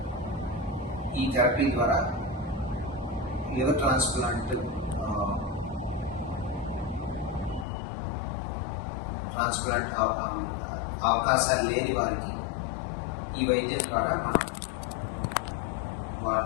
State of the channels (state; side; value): drops out; right; at 7.7 s